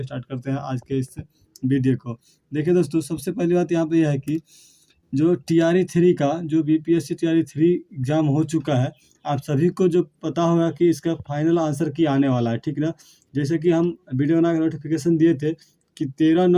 स्टार्ट करते हैं आज के इस वीडियो को। देखिए दोस्तों, सबसे पहली बात यहाँ पे यह है कि जो टीआरई 3 का जो बीपीएससी टीआरई 3 एग्ज़ाम हो चुका है, आप सभी को जो पता होगा कि इसका फाइनल आंसर की आने वाला है, ठीक ना। जैसे कि हम वीडियो बना के नोटिफिकेशन दिए थे कि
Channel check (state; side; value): identical; both; correlation 1.00